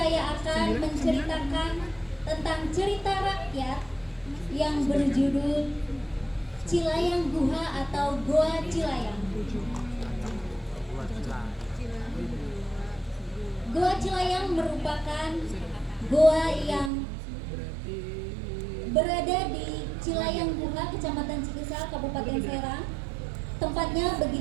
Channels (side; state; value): left; drops out; at 16.9 s